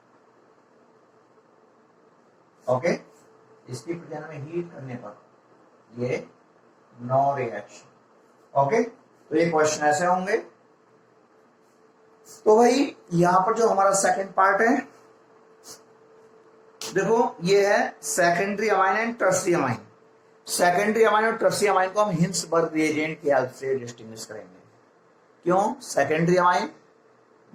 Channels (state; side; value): identical; both; correlation 1.00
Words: ओके, इसकी प्रेजेंस में हीट करने पर ये नो रिएक्शन। ओके, तो ये क्वेश्चन ऐसे होंगे। तो भाई यहां पर जो हमारा सेकंड पार्ट है, देखो ये है secondary amine and tertiary amine. Secondary amine और टर्शियरी अमाइन को हम हिंसबर्ग रिएजेंट की हेल्प से डिस्टिंग्विश करेंगे। क्यों सेकेंडरी अमाइन?